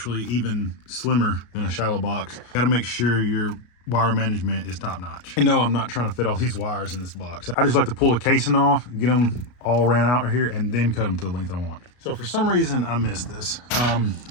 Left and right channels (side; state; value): right; late; 33 ms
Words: even slimmer than a shallow box. Got to make sure your wire management is top notch. I know I'm not trying to fit all these wires in this box. I just like to pull the casing off, get them all ran out here, and then cut them to the length I want. So for some reason, I missed this.